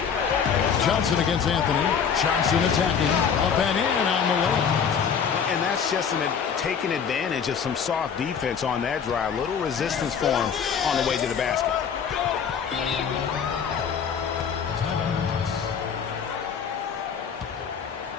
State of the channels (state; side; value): quieter; right; 7.0 dB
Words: Johnson against Anthony. Johnson attacking. Up and in on the way. And that's just taking advantage of some soft defense on that drive. Little resistance for him on the way to the basket.